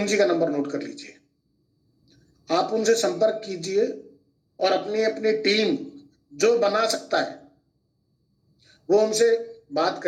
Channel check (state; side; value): identical; both; correlation 1.00